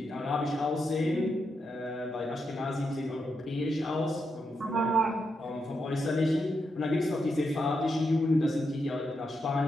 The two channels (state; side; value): normal; both; correlation 0.84